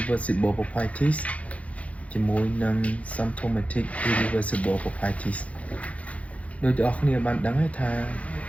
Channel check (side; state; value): right; late; 0.065 ms